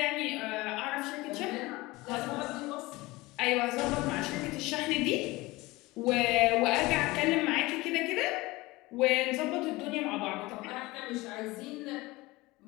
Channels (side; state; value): right; quieter; 21.0 dB